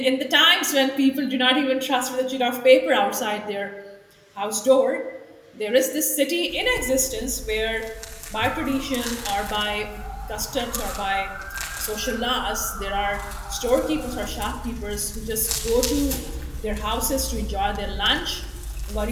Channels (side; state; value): both; identical; correlation 1.00